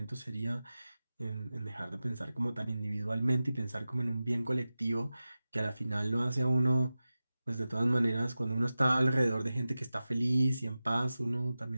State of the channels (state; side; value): inverted; both; correlation -0.95